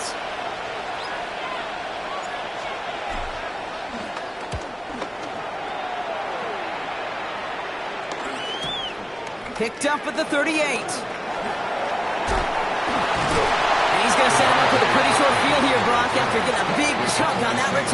Picked up at the 38. going to set him up with a pretty short field here, Brock, after getting a big chunk on that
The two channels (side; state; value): both; identical; correlation 1.00